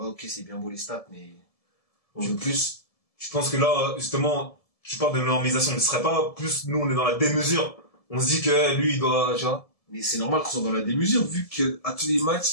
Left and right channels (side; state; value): right; late; 1.7 ms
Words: ok, c'est bien beau les stats, mais on veut plus. Je pense que là, justement, tu parles de normalisation, mais ce serait pas plus, nous, on est dans la démesure. On se dit que lui, il doit, tu vois. Mais c'est normal qu'on soit dans la démesure, vu que à tous les